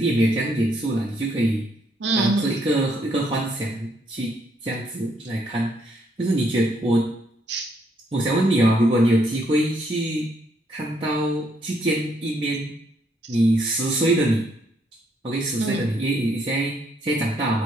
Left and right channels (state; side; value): normal; both; correlation 0.72